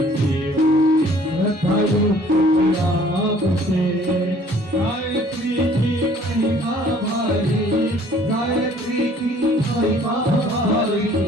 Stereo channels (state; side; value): normal; both; correlation 0.56